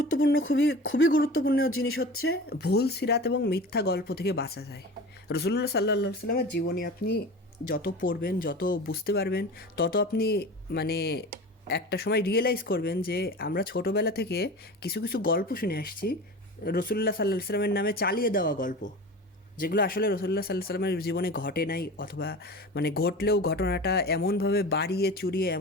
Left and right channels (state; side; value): normal; both; correlation 0.34